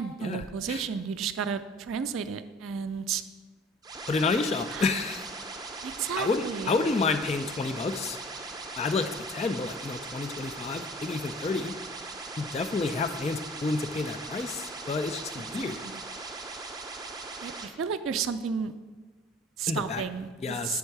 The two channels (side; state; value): both; normal; correlation 0.48